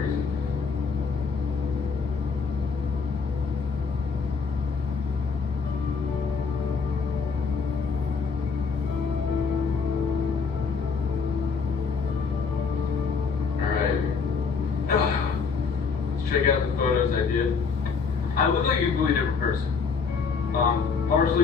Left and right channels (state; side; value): quieter; right; 5.3 dB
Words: Alright. Let's check out the photos I did. I look like a completely different person.